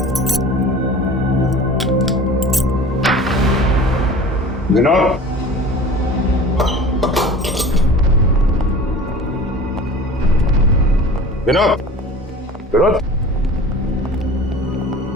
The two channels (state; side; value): normal; both; correlation 0.41